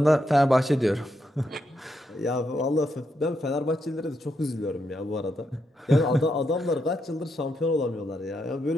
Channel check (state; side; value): normal; both; correlation 0.81